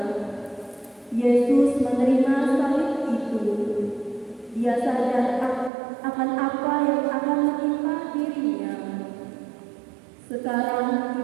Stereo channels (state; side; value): drops out; left; at 5.7 s